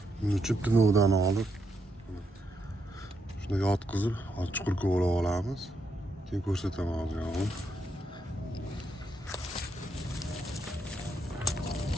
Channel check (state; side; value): normal; both; correlation 0.79